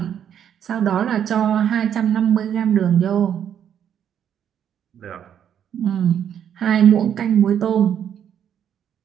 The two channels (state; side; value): quieter; left; 9.1 dB